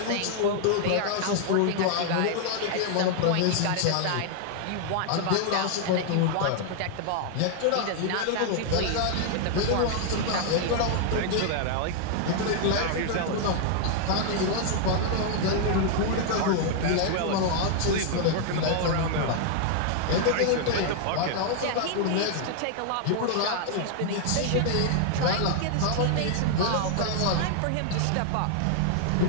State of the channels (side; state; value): both; different; correlation 0.00